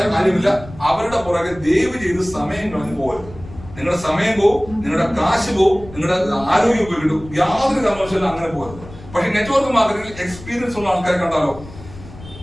കാര്യമില്ല. അവരുടെ പുറകെ ദയവ് ചെയ്ത് സമയം കളഞ്ഞു പോകരുത്. നിങ്ങളുടെ സമയം പോവും, നിങ്ങളുടെ കാശ് പോവും, നിങ്ങളുടെ ആരോഗ്യം പോയിട്ടു. യാതൊരു കാരണവശാലും അങ്ങനെ പോകരുത്. പക്ഷെ നെറ്റ്വർക്ക് മാർക്കറ്റിംഗിൽ എക്സ്പീരിയൻസ് ഉള്ള ആൾക്കാരെ കണ്ടാലോ,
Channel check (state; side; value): noise; left; rumble, 17 dB below the sound